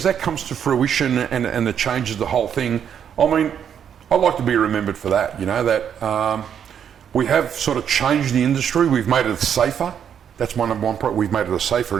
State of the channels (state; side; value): quieter; left; 8.4 dB